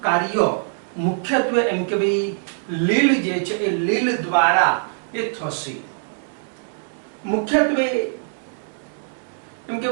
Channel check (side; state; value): left; silent; digital silence